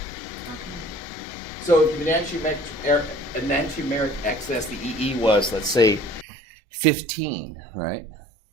So if the enantiomeric excess, the EE was, let's say, 15, right?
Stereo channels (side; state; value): left; drops out; at 6.2 s